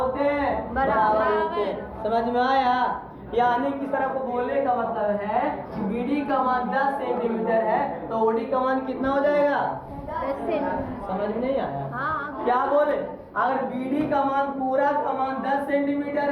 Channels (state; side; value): identical; both; correlation 1.00